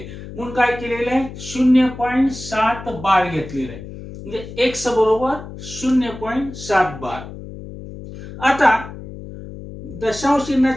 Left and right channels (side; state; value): left; noise; hum, 13 dB below the sound